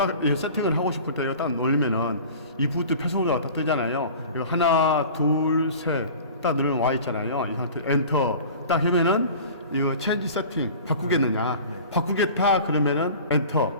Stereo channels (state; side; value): inverted; both; correlation -0.40